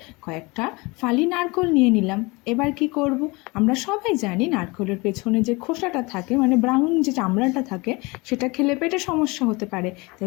কয়েকটা ফালি নারকোল নিয়ে নিলাম। এবার কি করব, আমরা সবাই জানি নারকোলের পেছনে যে খোসাটা থাকে, মানে ব্রাউন যে চামড়াটা থাকে, সেটা খেলে পেটে সমস্যা হতে পারে।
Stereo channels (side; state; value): right; quieter; 25.2 dB